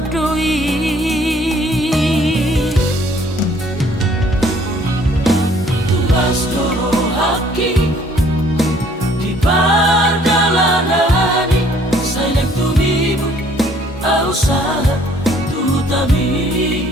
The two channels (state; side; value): normal; both; correlation 0.60